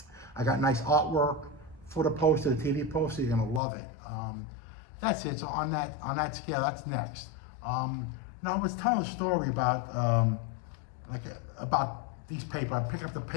I got nice artwork for the poster, the TV poster. You're gonna love it. That's it. So on that scale, that's next. Now I was telling a story about about these papers. I picked up the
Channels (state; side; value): drops out; right; at 3.6 s